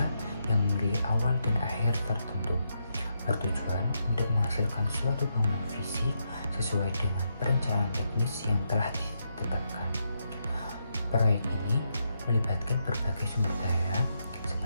yang memiliki awal dan akhir tertentu, bertujuan untuk menghasilkan suatu bangunan fisik sesuai dengan perencanaan teknis yang telah ditetapkan. Proyek ini melibatkan berbagai sumber daya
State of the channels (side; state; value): both; inverted; correlation -0.81